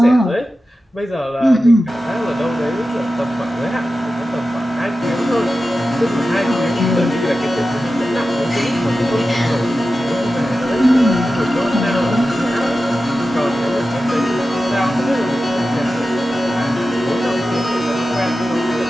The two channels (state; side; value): normal; both; correlation 0.93